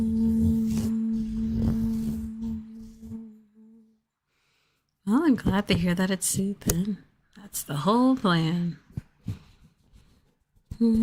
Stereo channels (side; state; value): both; identical; correlation 1.00